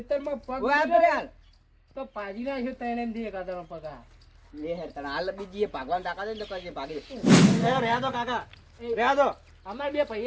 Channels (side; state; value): both; identical; correlation 1.00